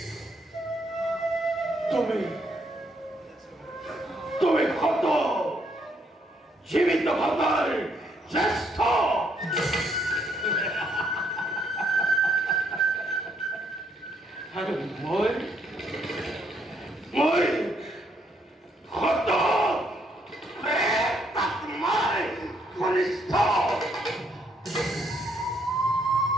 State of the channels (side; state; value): both; normal; correlation 0.72